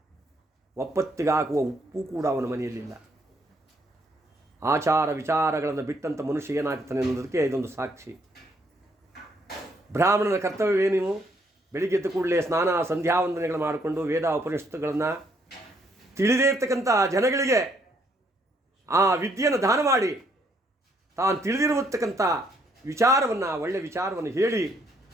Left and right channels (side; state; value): both; normal; correlation 0.70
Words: ಒಪ್ಪತ್ತಿಗಾಗುವ ಉಪ್ಪು ಕೂಡ ಅವನ ಮನೆಯಲ್ಲಿಲ್ಲ. ಆಚಾರ ವಿಚಾರಗಳನ್ನು ಬಿಟ್ಟಂಥ ಮನುಷ್ಯ ಏನಾಗ್ತಾನೆ ಅನ್ನೋದಕ್ಕೆ ಇದೊಂದು ಸಾಕ್ಷಿ. ಬ್ರಾಹ್ಮಣನ ಕರ್ತವ್ಯವೇನು? ಬೆಳಿಗ್ಗೆ ಎದ್ದ ಕೂಡಲೇ ಸ್ನಾನ ಸಂಧ್ಯಾವಂದನೆಗಳು ಮಾಡಿಕೊಂಡು ವೇದ ಉಪನಿಷತ್ತುಗಳನ್ನು ತಿಳಿದೇ ಇರ್ತಕ್ಕಂಥ ಜನಗಳಿಗೆ ಆ ವಿದ್ಯೆಯನ್ನು ದಾನ ಮಾಡಿ ತಾನು ತಿಳಿದಿರುವತಕ್ಕಂಥ ವಿಚಾರವನ್ನು, ಒಳ್ಳೆಯ ವಿಚಾರವನ್ನು ಹೇಳಿ